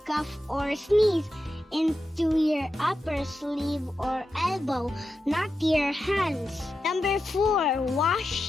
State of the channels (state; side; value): normal; both; correlation 0.89